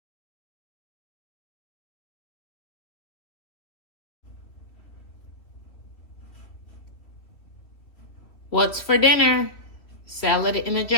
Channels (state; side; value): late; right; 3.1 ms